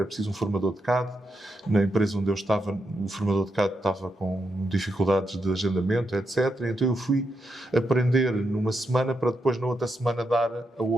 preciso um formador de CAD. Na empresa onde eu estava, o formador de CAD estava com dificuldades de agendamento, etc. Então eu fui aprender numa semana para depois, na outra semana, dar a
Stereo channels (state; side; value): normal; both; correlation 0.83